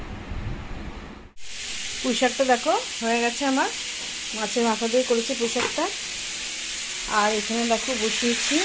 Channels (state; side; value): identical; both; correlation 1.00